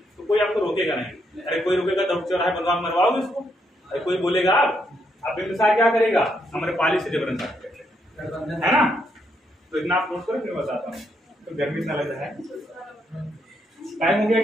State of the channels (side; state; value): both; normal; correlation 0.76